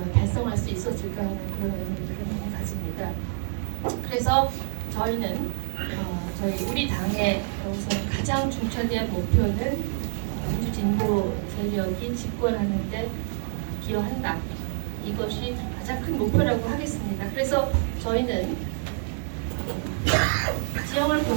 달성할 수 있었을까 하는 그런 의미를 가집니다. 그래서 저희는 저희 우리 당의 우선 가장 중차대한 목표는 민주진보 세력이 집권하는데 기여한다. 이것이 가장 큰 목표라고 하겠습니다. 그래서 저희는 지형을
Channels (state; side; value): silent; left; 60 dB below the other